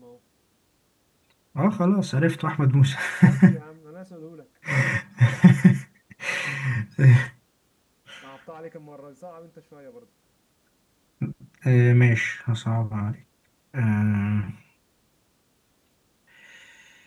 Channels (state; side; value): identical; both; correlation 1.00